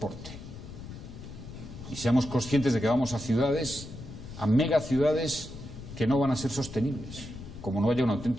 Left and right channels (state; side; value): noise; left; rumble, 13 dB below the sound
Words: Y seamos conscientes de que vamos a ciudades, a megaciudades que no van a ser sostenibles, como no haya una